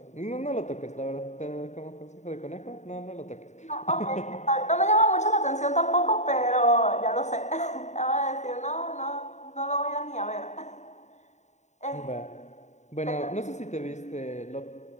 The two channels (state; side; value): late; right; 0.34 ms